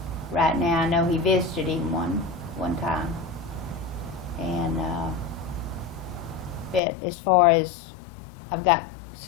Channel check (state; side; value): drops out; right; at 6.8 s